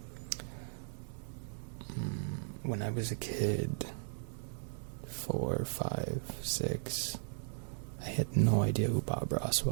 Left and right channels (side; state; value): left; silent; 53 dB below the other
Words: When I was a kid, 4, 5, 6, I had no idea who Bob Ross